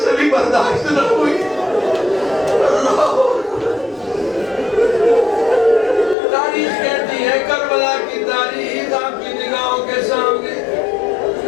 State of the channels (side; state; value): right; drops out; at 6.2 s